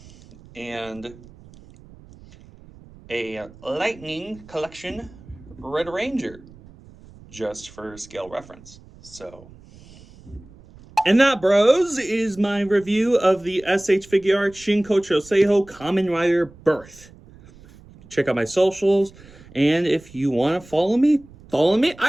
and a Lightning Collection Red Ranger, just for scale reference. So, and that, bros, is my review of the SH Figure Arts Shinkocchou Seihou Kamen Rider Birth. Check out my socials, and if you want to follow me,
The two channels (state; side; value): noise; right; rumble, 22 dB below the sound